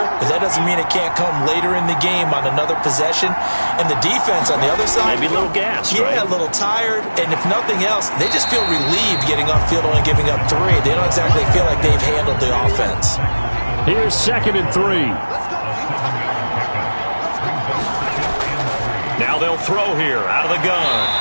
but that doesn't mean it can't come later in the game on another possession. And the defense on the other side, maybe a little gas, yeah, right? A little tired. And if nothing else, they just feel relieved getting off field only giving up 3. They don't exactly feel like they've handled the offense. Here's 2nd and 3. Now they'll throw here out of the gun.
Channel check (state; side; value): inverted; both; correlation -1.00